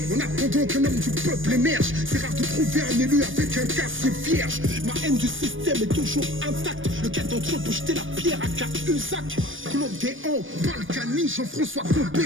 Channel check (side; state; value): left; late; 0.57 ms